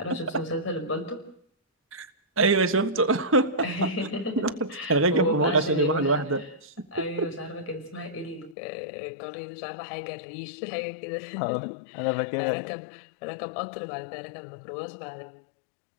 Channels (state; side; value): drops out; right; at 8.6 s